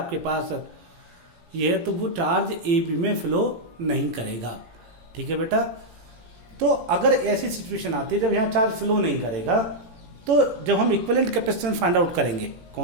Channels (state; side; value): late; left; 18 ms